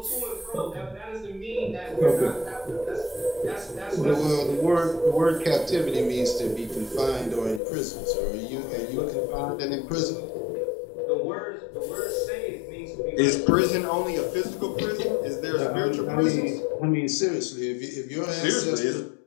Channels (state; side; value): drops out; right; at 7.6 s